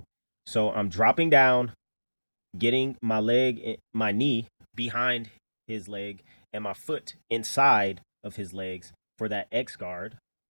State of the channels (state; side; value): inverted; both; correlation -1.00